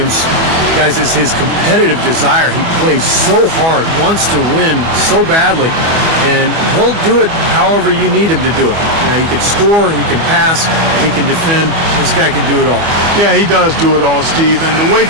guys, is his competitive desire. He plays so hard, wants to win so badly, and he'll do it however you need him to do it. You know, he can score, he can pass, he can defend. This guy can do it all. Yeah, he does do it all, Steve. And the way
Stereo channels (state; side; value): late; left; 25 ms